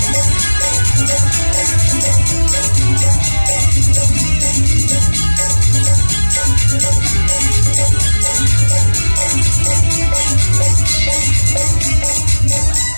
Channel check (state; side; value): inverted; both; correlation -1.00